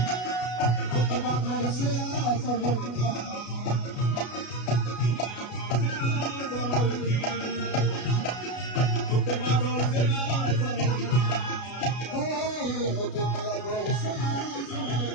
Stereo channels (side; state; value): right; late; 33 ms